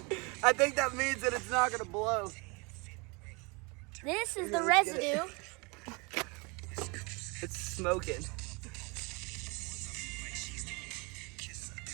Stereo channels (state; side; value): quieter; left; 29.1 dB